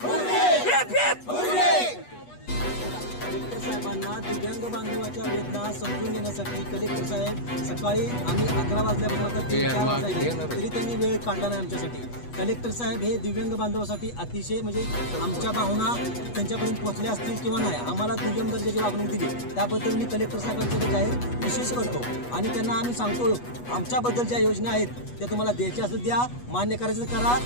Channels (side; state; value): right; late; 8.2 ms